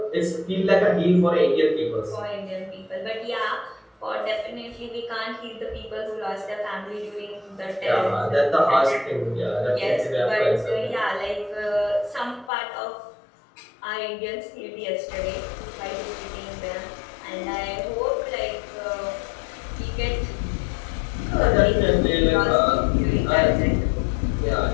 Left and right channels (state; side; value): drops out; right; at 12.5 s